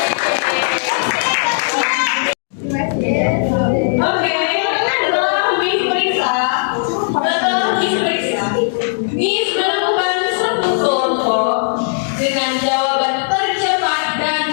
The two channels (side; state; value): right; silent; digital silence